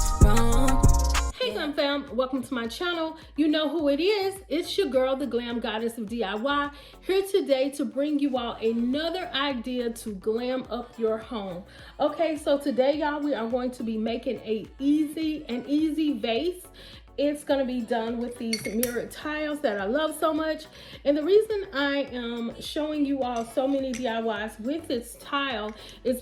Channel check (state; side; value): identical; both; correlation 1.00